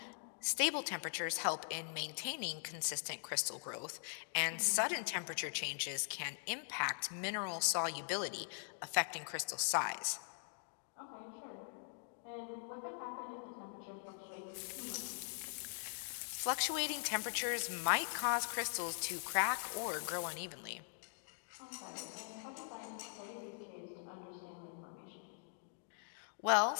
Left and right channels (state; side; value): silent; right; digital silence